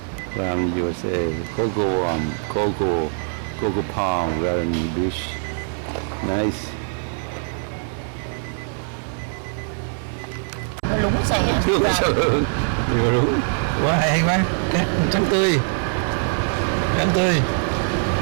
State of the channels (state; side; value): silent; left; 64 dB below the other